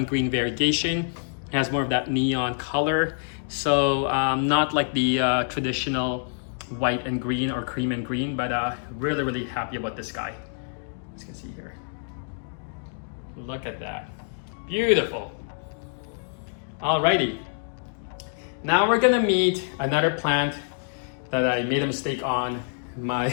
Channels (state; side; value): silent; right; digital silence